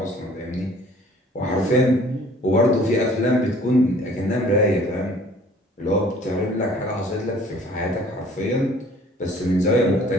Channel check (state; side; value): normal; both; correlation 0.53